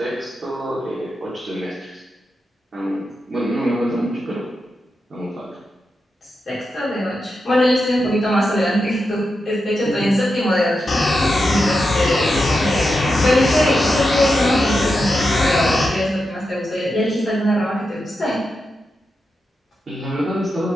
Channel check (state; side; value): normal; both; correlation 0.88